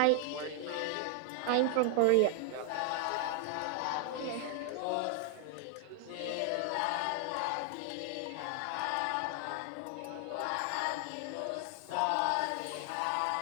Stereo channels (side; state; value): both; different; correlation 0.00